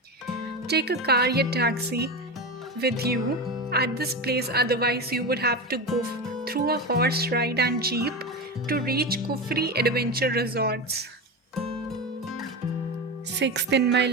Take a car or taxi with you at this place, otherwise you would have to go through a horse ride and jeep to reach Kufri Adventure Resorts. Sixth in my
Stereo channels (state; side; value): normal; both; correlation 0.21